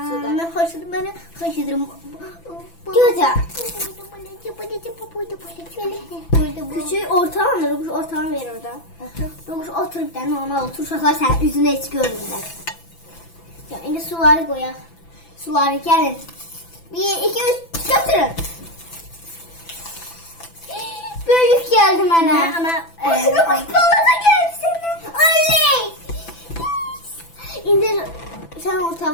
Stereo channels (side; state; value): right; late; 6.0 ms